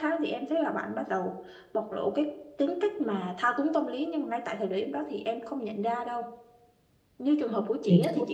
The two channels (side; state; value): both; identical; correlation 1.00